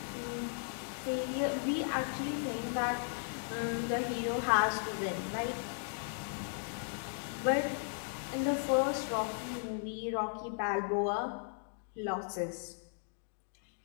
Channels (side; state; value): right; silent; digital silence